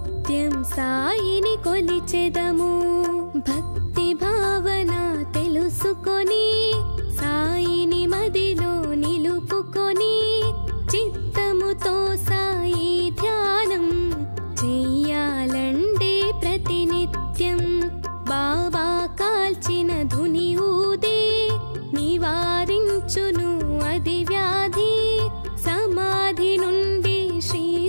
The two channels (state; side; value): inverted; both; correlation -1.00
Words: సాయిని కొలిచెదము. భక్తి భావన తెలుసుకొని, సాయిని మదిలో నిలుపుకొని, చిత్తముతో సాయి ధ్యానం చెయ్యాలండే ప్రతినిత్యం. బాబా కాల్చిన ధుని ఊదే, నివారించును అది వ్యాధి. సమాధి నుండి శ్రీ